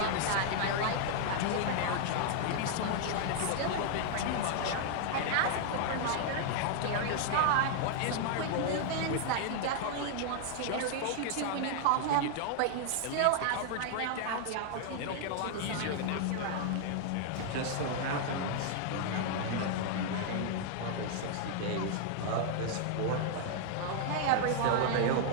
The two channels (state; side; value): different; both; correlation 0.00